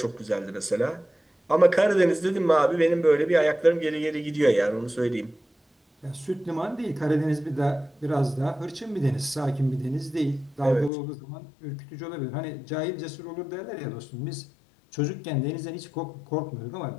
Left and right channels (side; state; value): right; drops out; at 10.9 s